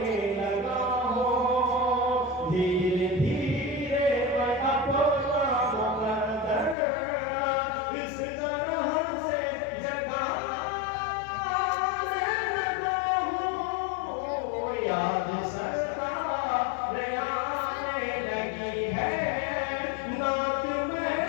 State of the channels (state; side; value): drops out; right; at 6.8 s